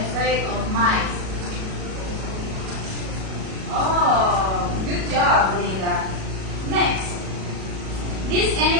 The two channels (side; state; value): left; late; 37 ms